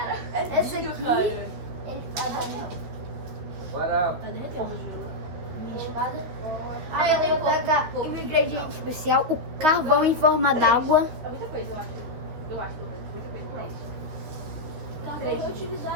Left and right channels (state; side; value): late; left; 13 ms